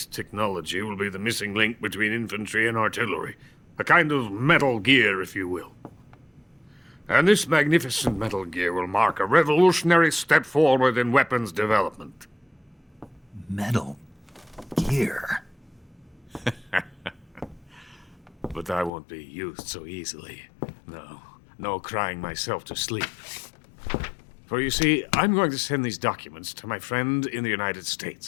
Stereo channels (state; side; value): drops out; right; at 18.9 s